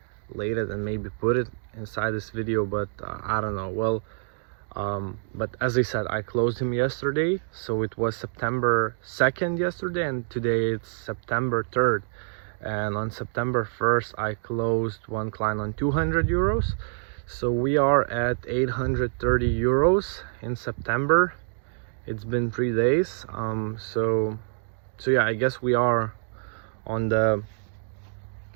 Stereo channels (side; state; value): left; silent; digital silence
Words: it and maybe put it inside this video, but I don't know. Well, but as I said, I closed him yesterday, so it was September 2nd yesterday, and today it's September 3rd. and on September 1st I closed one client on 200 euros. So we are at 830 euros in September. It's been 3 days. So yeah, I guess we are on the